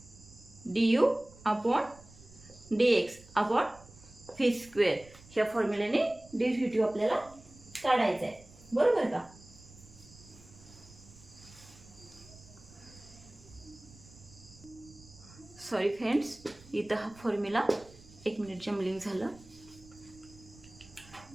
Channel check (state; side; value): noise; right; rumble, 22 dB below the sound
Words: du/dx/v². ह्या फॉर्म्युल्याने डेरिव्हेटिव्ह आपल्याला काढायचा आहे, बरोबर का. सॉरी फ्रेंड्स, इथं हा फॉर्म्युला 1 मिनिट जम्बलिंग झालं.